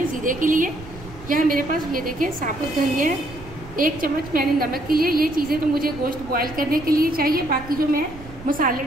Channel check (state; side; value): noise; right; rumble, 17 dB below the sound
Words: ज़ीरे के लिए। यहाँ मेरे पास ये देखिए साबुत धनिया है, 1 चम्मच मैंने नमक के लिए। ये चीज़ें तो मुझे गोश्त बॉयल करने के लिए चाहिए, बाकी जो मैं मसाले